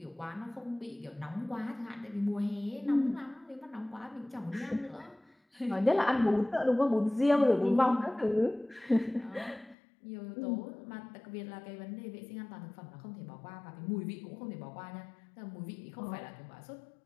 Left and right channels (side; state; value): right; drops out; at 9.8 s